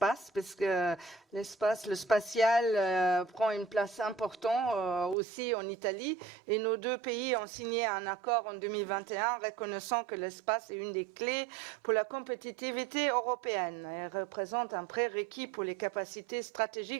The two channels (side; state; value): left; drops out; at 5.2 s